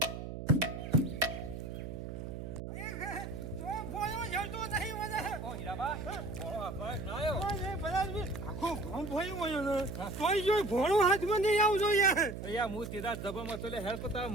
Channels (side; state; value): right; noise; hum, 7 dB below the sound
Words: ભોળો હાથમાં નહીં આવજો યાર હું સીધા જબરમાં તો હેલ્પ કરતા